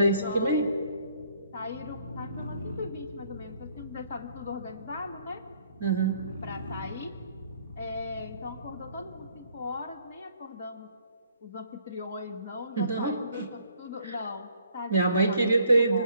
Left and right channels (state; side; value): inverted; both; correlation -0.64